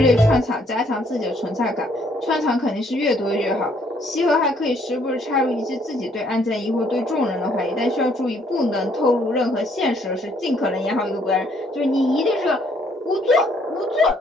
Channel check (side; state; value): both; normal; correlation 0.66